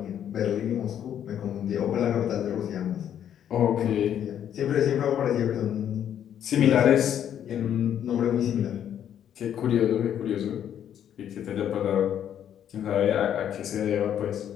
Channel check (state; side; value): quieter; right; 9.8 dB